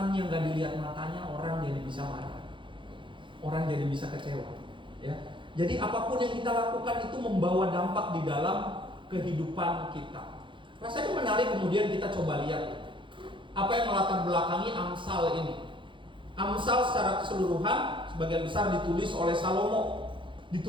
yang gak dilihat matanya, orang jadi bisa marah, orang jadi bisa kecewa. Ya, jadi apapun yang kita lakukan itu membawa dampak di dalam kehidupan kita. Rasanya menarik kemudian kita coba lihat apa yang melatar belakangi Amsal ini. Amsal secara keseluruhan sebagian besar ditulis oleh Salomo,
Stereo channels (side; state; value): left; late; 0.24 ms